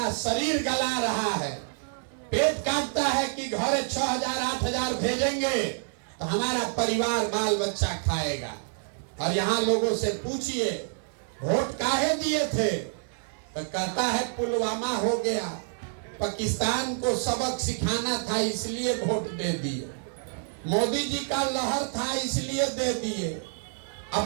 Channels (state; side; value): silent; left; digital silence